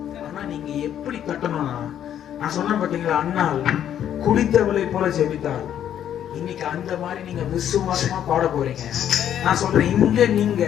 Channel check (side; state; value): right; quieter; 10.1 dB